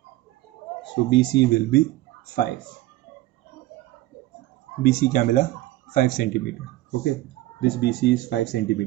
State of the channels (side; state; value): left; quieter; 16.9 dB